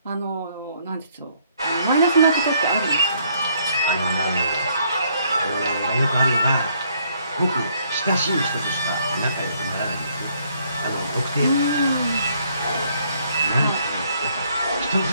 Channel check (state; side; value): inverted; both; correlation -0.67